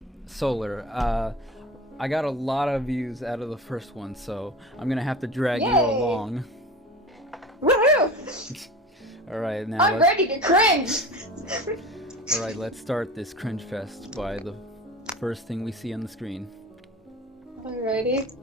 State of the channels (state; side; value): normal; both; correlation 0.35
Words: Solar, I got a lot of views out of the first one, so I'm gonna have to drag you Yay. along. Woohoo! Alright, now I'm ready to cringe! Alright, let's start this cringe fest by the first thing we see on the screen. Alrighty.